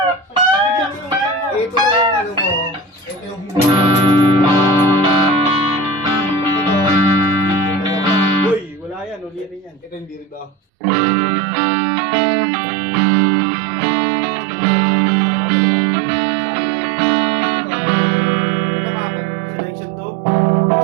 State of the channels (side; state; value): left; drops out; at 10.6 s